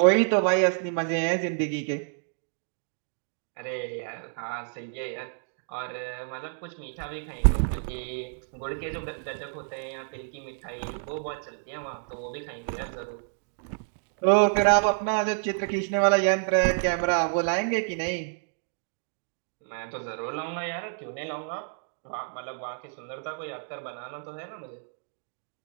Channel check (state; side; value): silent; left; digital silence